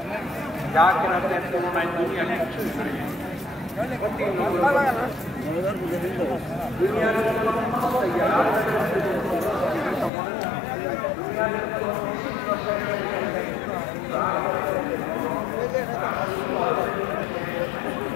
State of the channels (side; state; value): right; drops out; at 10.1 s